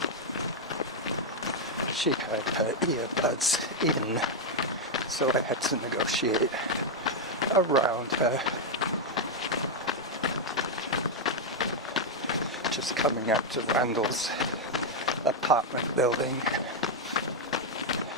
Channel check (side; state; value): both; normal; correlation 0.00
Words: She had her earbuds in, so I had to negotiate around her. Just coming out to Reynolds apartment building.